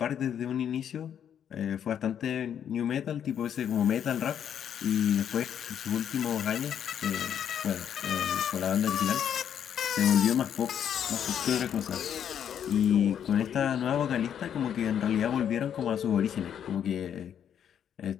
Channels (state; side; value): quieter; right; 9.0 dB